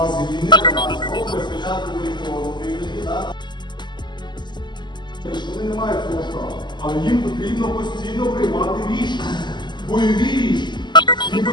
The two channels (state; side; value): late; right; 0.21 ms